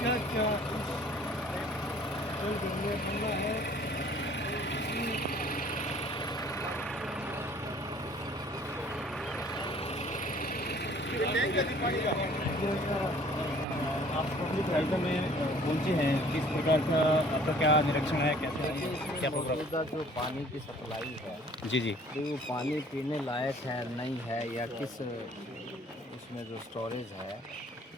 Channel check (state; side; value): normal; both; correlation 0.54